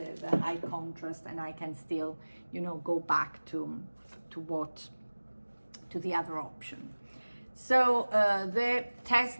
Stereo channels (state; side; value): inverted; both; correlation -1.00